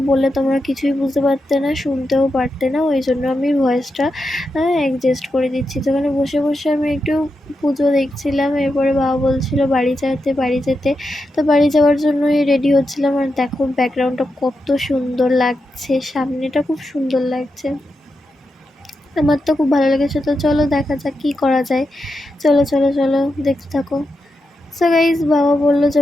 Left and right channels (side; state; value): both; normal; correlation 0.87